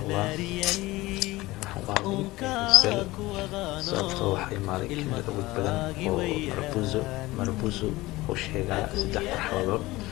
الله. sababtoo waxay imaaday kelmad awood badan oo marbuzo oo sheegaya 3 marxaladood.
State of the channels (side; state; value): right; quieter; 19.4 dB